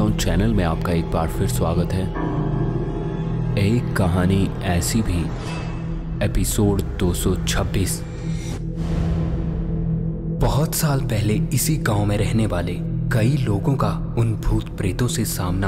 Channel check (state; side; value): identical; both; correlation 1.00